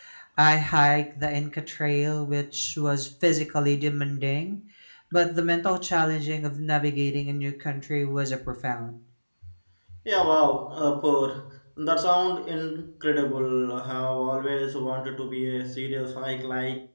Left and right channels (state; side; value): inverted; both; correlation -1.00